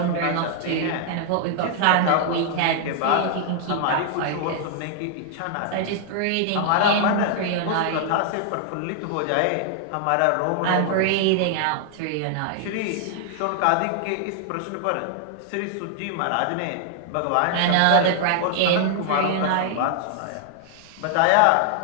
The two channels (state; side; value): different; both; correlation 0.00